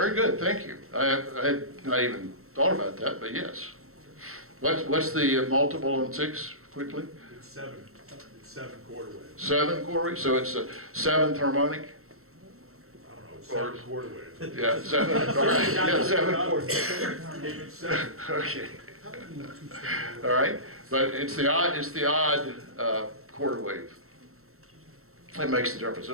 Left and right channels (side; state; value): left; late; 0.63 ms